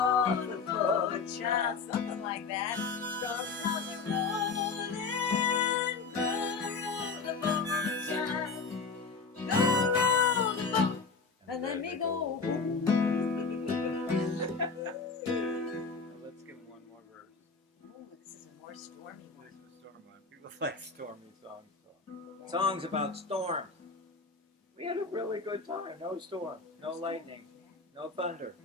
the boat, child. Something like that. Storm clouds are rolling. Go row the boat, child. Go row the boat and let me go home. Let's give him one more verse. Ooh, this is a more stormy one. This is a storm one. People like stormy songs. Songs about storms. We had a really good time. No storm, no lightning, no thunder.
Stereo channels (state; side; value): quieter; right; 4.7 dB